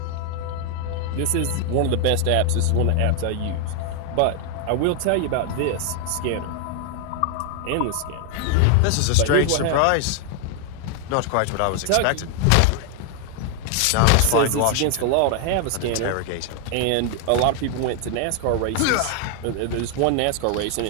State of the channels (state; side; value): different; both; correlation 0.01